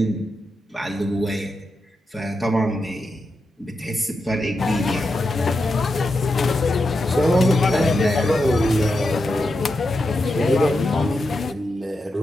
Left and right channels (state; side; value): normal; both; correlation 0.87